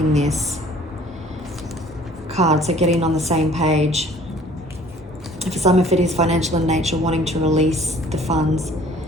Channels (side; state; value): both; normal; correlation 0.53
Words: this card, so getting on the same page. For some, if it is financial in nature, wanting to release the funds.